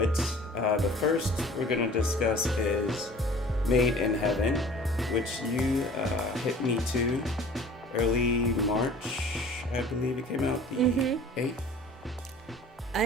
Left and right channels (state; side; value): normal; both; correlation 0.46